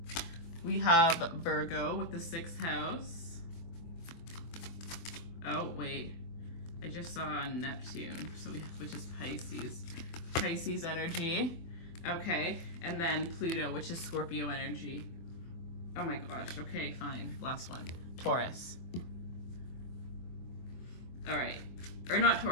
We have Virgo with the 6th house. Oh, wait. I just saw Neptune, so we have, which is Pisces. Pisces energy. Okay, and then Pluto, which is Scorpio energy. Oh my gosh, okay, fine. Last one. Taurus. All right. Or not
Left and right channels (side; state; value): right; late; 24 ms